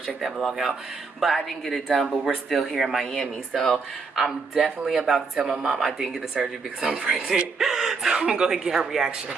that vlog out. But I didn't get it done, but we're still here in Miami. So I'm definitely about to tell my mom I didn't get the surgery because I'm pregnant. So I'm going to go ahead and get her reaction.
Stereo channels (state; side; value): quieter; left; 4.6 dB